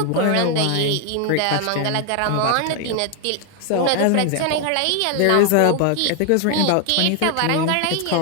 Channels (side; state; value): both; different; correlation 0.00